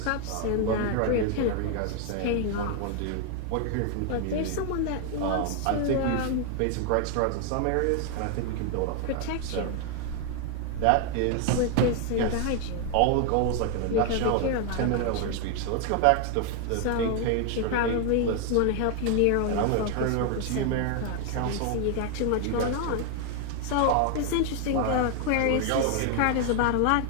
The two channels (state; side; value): different; both; correlation 0.01